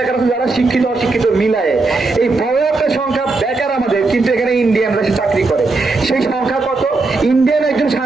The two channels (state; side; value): quieter; left; 3.6 dB